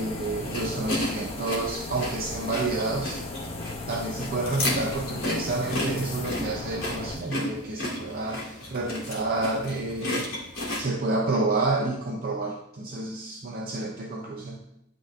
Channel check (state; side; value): normal; both; correlation 0.20